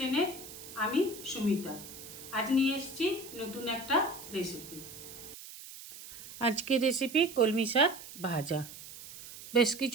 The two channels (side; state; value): right; noise; hiss, 14 dB below the sound